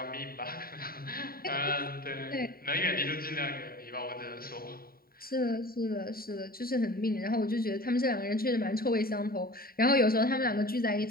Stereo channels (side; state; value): right; late; 0.43 ms